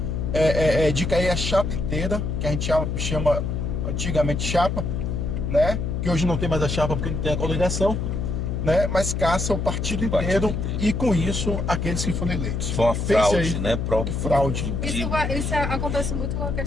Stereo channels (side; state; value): left; noise; hum, 1 dB below the sound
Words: de cair a chapa inteira, que a gente chama antigamente chapa, né? Que hoje não tem mais a chapa porque não tem a coligação, né? Mas caça o partido inteiro e com isso aqueles que foram eleitos. Foi uma Fez fraude, aí, né? fraude. Isso acontece muito na